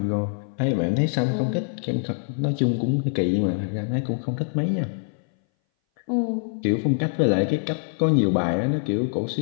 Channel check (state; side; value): silent; right; 60 dB below the other